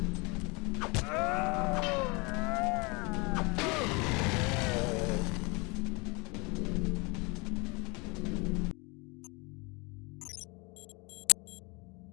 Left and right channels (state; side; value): quieter; right; 28.9 dB